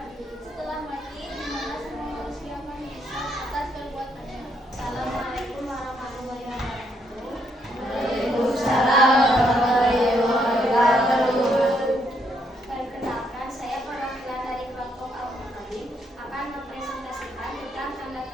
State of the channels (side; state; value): both; normal; correlation 0.74